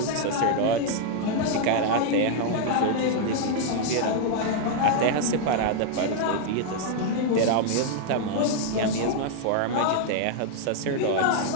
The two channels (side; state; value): both; different; correlation 0.00